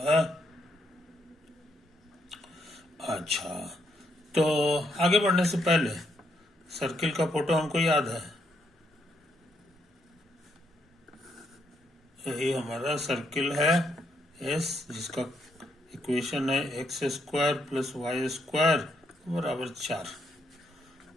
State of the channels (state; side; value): normal; both; correlation 0.76